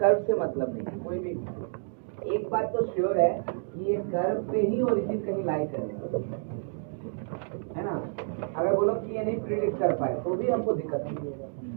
से मतलब नहीं। कोई भी एक बात तो श्योर है कि ये कर्व पे ही ओरिजिन कहीं लाई करेगा, है ना। अगर बोलो कि ये नहीं प्रिडिक्ट कर पाए तो भी हमको दिक्कत नहीं है,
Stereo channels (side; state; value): left; silent; 58 dB below the other